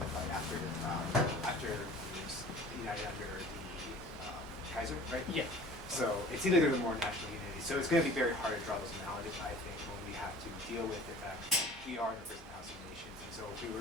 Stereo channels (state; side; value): normal; both; correlation 0.45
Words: after it was united under the Kaiser, right? Yeah. So it seems like there's a more national unity. So it's going to be very hard to draw those analogies, I think, when we have to deal with the fact that we are in a prison house of nations. And so if we